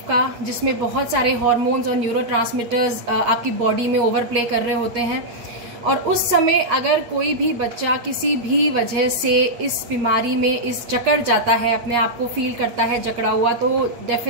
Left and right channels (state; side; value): late; left; 8.4 ms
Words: का, जिसमें बहुत सारे हार्मोन्स और न्यूरोट्रांसमीटर्स आपकी बॉडी में ओवरप्ले कर रहे होते हैं। और उस समय अगर कोई भी बच्चा किसी भी वजह से इस बीमारी में जकड़ जाता है, अपने आप को फील करता है जकड़ा हुआ, तो